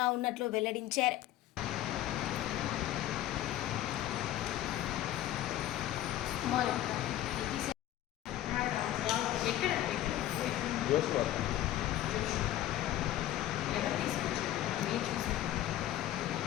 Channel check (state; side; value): quieter; right; 13.5 dB